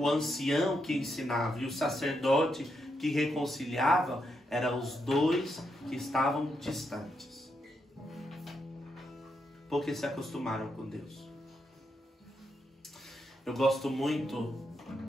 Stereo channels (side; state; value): both; normal; correlation 0.81